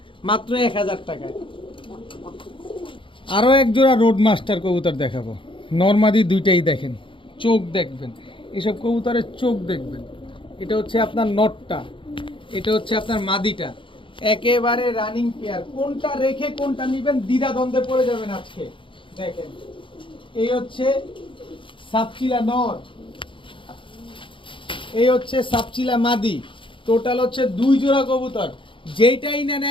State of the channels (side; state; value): right; late; 0.25 ms